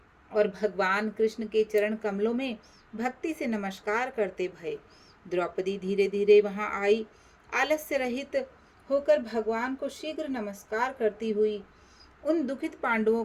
और भगवान कृष्ण के चरण कमलों में भक्ति से नमस्कार करते भये। द्रौपदी धीरे धीरे वहां आई। आलस्य रहित होकर भगवान को शीघ्र नमस्कार करती हुई उन दुखित पांडवों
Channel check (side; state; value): both; identical; correlation 1.00